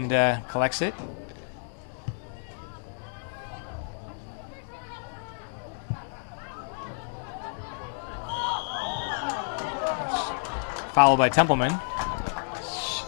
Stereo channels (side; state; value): right; silent; 58 dB below the other